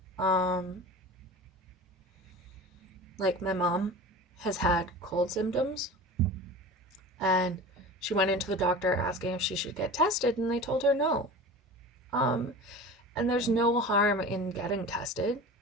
Like my mom has had cold symptoms, and she went into the doctor asking if she should get tested, and they told her no. And there's no harm in getting tested,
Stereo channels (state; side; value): normal; both; correlation 0.35